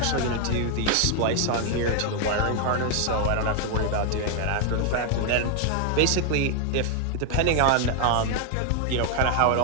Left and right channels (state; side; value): different; both; correlation 0.00